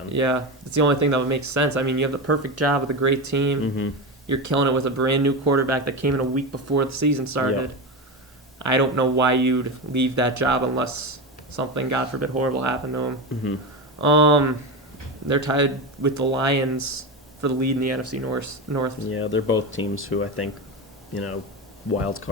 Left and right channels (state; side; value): normal; both; correlation 0.19